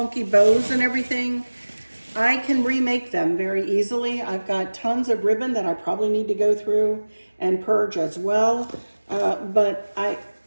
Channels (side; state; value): both; inverted; correlation -1.00